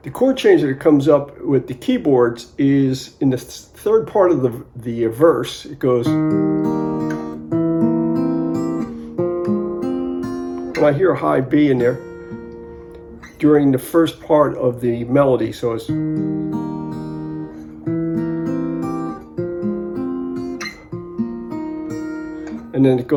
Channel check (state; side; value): identical; both; correlation 1.00